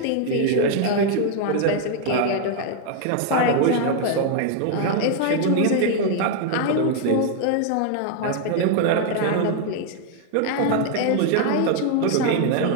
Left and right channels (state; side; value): different; both; correlation 0.00